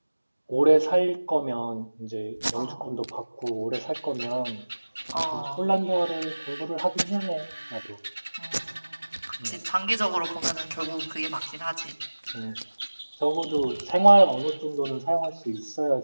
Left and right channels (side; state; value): both; inverted; correlation -1.00